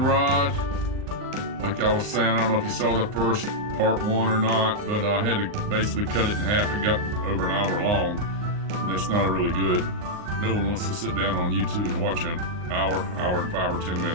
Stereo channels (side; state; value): left; late; 39 ms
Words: Like I was saying, I don't know if you saw the first part 1 or not, but I had to basically cut it in half. It got over an hour long, and that's not really good. No one wants to sit down on YouTube and watch an hour and 5 or 10